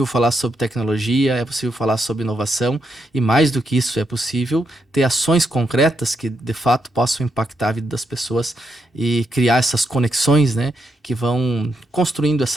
falar sobre tecnologia, é possível falar sobre inovação e, mais do que isso, é possível ter ações concretas que, de fato, possam impactar a vida das pessoas e criar essas conexões, né, que vão construindo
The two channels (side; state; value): both; normal; correlation 0.81